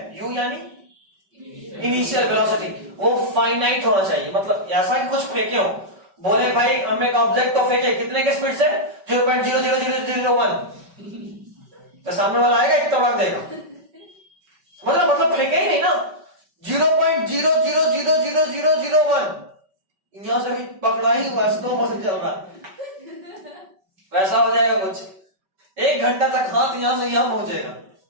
u यानी इनिशियल वेलोसिटी, वो फाइनाइट होना चाहिए। मतलब ऐसा कि कुछ फेंके हो, बोले भाई हम एक ऑब्जेक्ट को फेंके कितने के स्पीड से? 0.00001, तो सामने वाला आएगा एक तड़क देगा। मतलब फेंके ही नहीं ना, 0.0000001 यहां से भी पकड़ा ही हुआ, स्लो मोशन चल रहा है, वैसा हो जाएगा कुछ। 1 घंटा तक हाथ यहां से यहां पहुंचेगा,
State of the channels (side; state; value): left; late; 5.2 ms